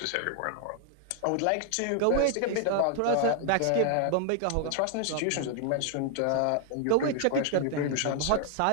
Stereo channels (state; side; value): different; both; correlation 0.00